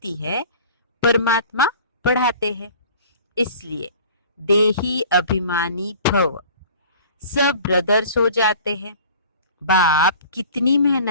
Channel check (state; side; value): inverted; both; correlation -0.45